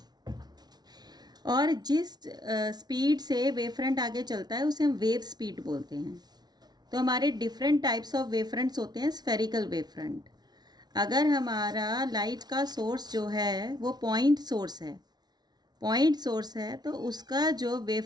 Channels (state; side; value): late; left; 0.19 ms